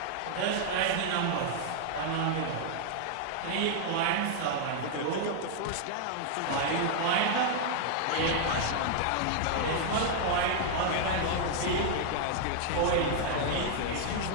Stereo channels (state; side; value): different; both; correlation 0.00